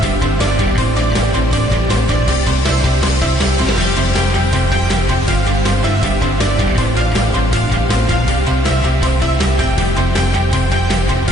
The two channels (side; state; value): both; normal; correlation 0.68